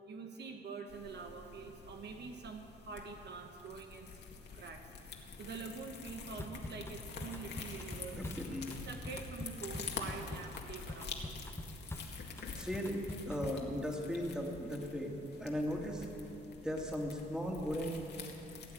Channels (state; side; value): normal; both; correlation 0.63